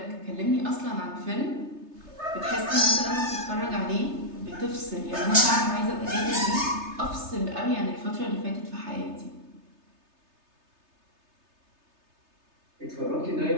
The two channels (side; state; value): left; late; 3.3 ms